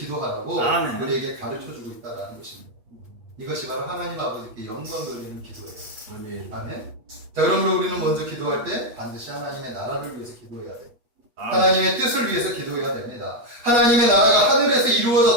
아멘. 우리에게 가르쳐주고 있다는 것입니다. 이것이 바로 하나님 아버지께 영광 돌리는 기도예요. 아멘. 아멘. 자, 그러므로 우리는 먼저 기도할 때 반드시 하나님의 나라를 위해서 기도해야 돼요. 아멘. 하나님의 뜻을 위해서 기도해야 됩니다. 하나님의 나라가 하늘에서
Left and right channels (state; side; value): late; left; 8.3 ms